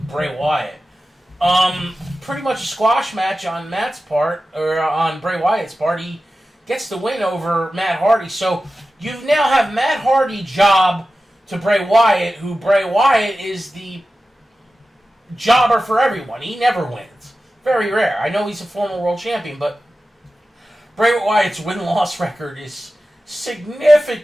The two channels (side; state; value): both; normal; correlation 0.94